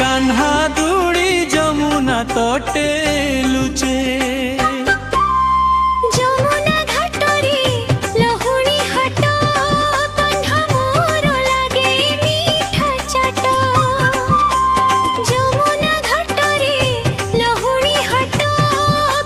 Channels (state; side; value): identical; both; correlation 1.00